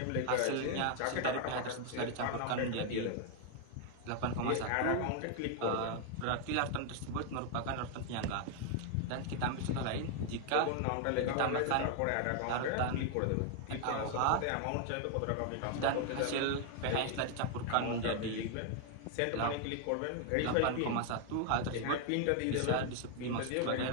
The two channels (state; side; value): different; both; correlation 0.00